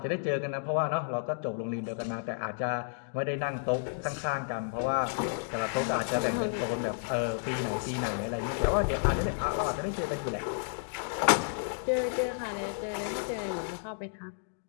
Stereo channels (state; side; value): silent; right; digital silence